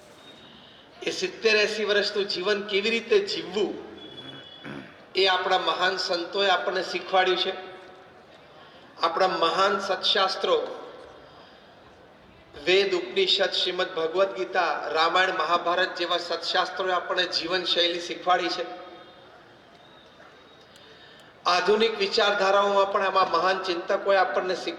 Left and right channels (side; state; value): both; identical; correlation 1.00